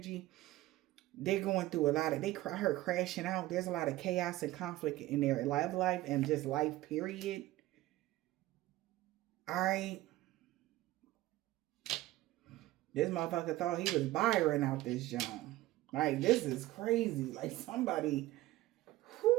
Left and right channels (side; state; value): left; quieter; 16.8 dB